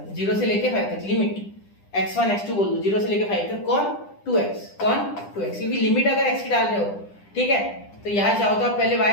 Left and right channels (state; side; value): late; right; 10 ms